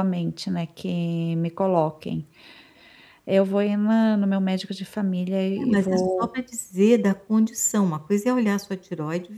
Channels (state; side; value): identical; both; correlation 1.00